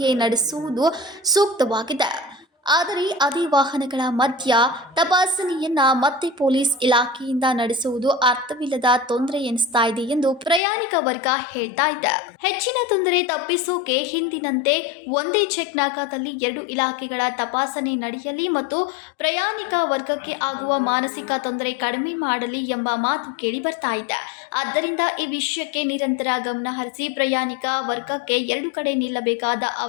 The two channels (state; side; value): drops out; right; at 10.6 s